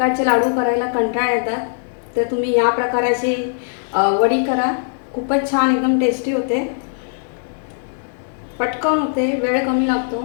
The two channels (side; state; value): right; silent; 60 dB below the other